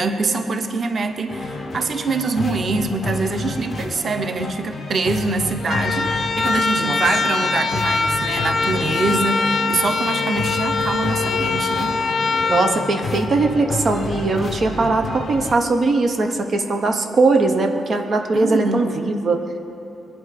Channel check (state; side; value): normal; both; correlation 0.79